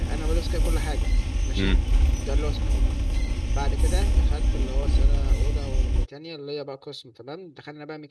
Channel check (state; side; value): identical; both; correlation 1.00